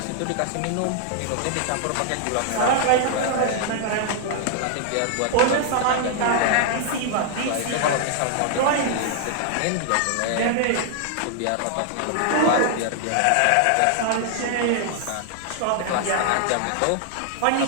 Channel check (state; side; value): different; both; correlation -0.01